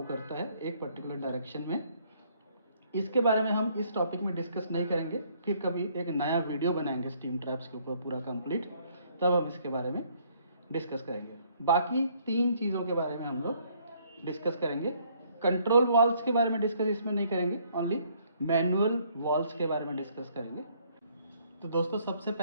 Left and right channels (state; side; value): inverted; both; correlation -0.65